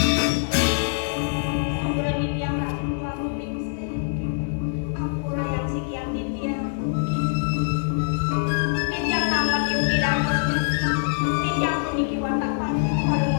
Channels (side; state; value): right; silent; digital silence